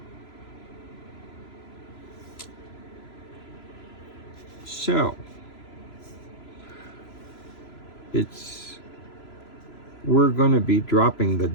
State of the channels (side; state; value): right; late; 3.0 ms